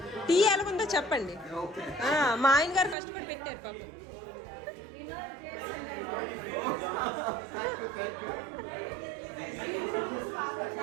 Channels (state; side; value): drops out; left; at 3.0 s